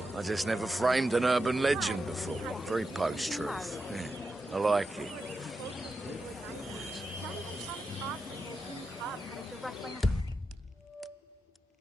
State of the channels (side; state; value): both; normal; correlation 0.88